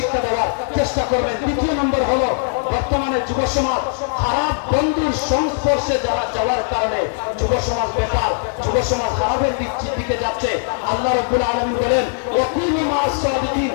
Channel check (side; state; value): right; silent; 66 dB below the other